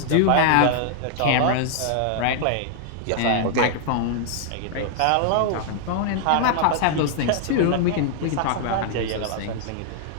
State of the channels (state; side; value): different; both; correlation -0.01